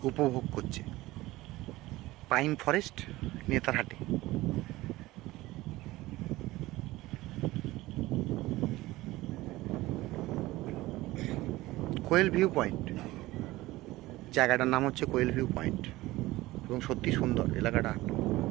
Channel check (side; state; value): left; quieter; 18.4 dB